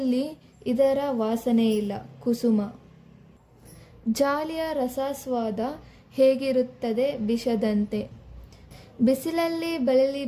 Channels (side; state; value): both; identical; correlation 1.00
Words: ಇದರ ವಾಸನೆ ಇಲ್ಲ, ಕುಸುಮ. ಜಾಲಿಯ ರಸಾಸ್ವಾದ ಹೇಗಿರುತ್ತದೆ ವಿಷದಂತೆ. ಬಿಸಿಲಲ್ಲಿ ಬಳಲಿ